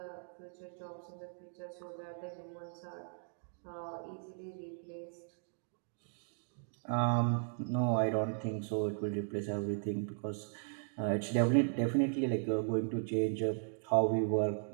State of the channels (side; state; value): left; silent; digital silence